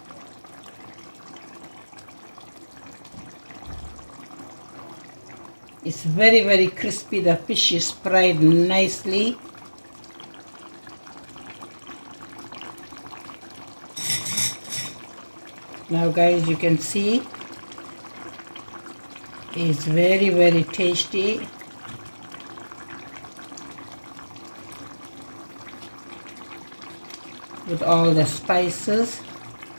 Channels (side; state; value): both; inverted; correlation -1.00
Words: It's very crispy. The fish is fried nicely. Now guys, you can see it's very tasty. With all the spices.